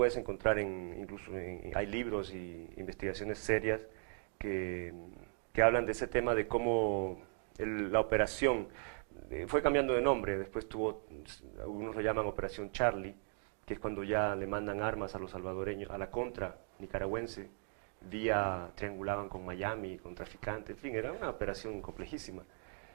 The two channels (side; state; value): left; silent; 52 dB below the other